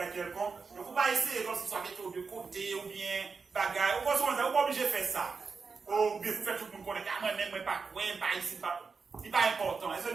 quelconque. Donc, il ne faut pas essayer comme si ça avait de côté ou bien bagages. Ou pas obligé de faire ça. Ou bien, vous faites tout le monde connaître. Moi, même, pas quoi, pas ici, pas. C'est pas important. Est-ce que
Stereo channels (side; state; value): left; quieter; 4.9 dB